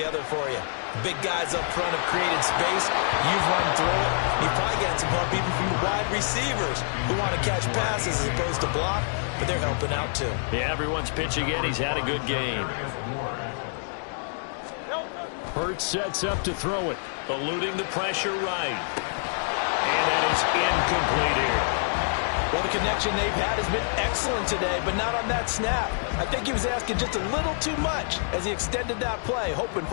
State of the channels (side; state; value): right; silent; digital silence